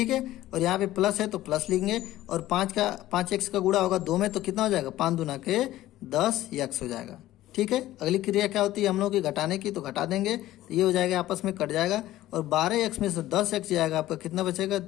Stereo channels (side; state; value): right; quieter; 15.0 dB